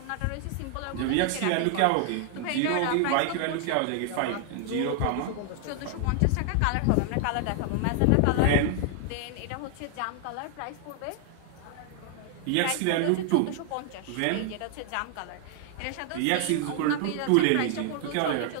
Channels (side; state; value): both; different; correlation 0.00